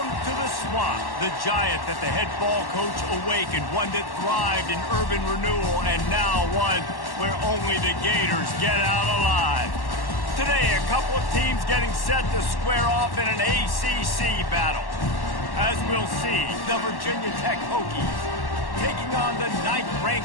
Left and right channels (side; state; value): right; late; 1.1 ms